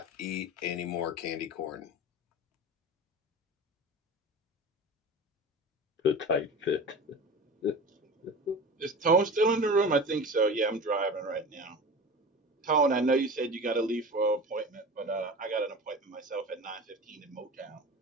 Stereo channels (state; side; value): normal; both; correlation 0.33